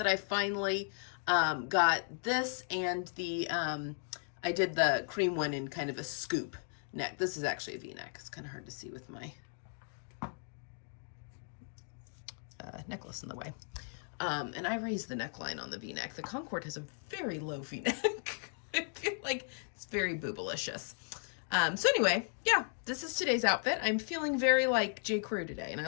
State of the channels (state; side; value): silent; right; 54 dB below the other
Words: I finally got this and the, I did the cream one in kind of a scoop neck. This is actually a V-neck. It's kind of hard to see with my necklace in the way. And I raised the neckline on the V-neck. The Concord has a very low V-neck. I feel like it's very boobalicious. So anyway, this is today's outfit. I'm feeling very like J.Crew today, and